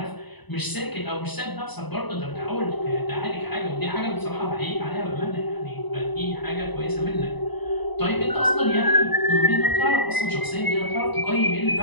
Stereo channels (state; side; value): late; right; 1.0 ms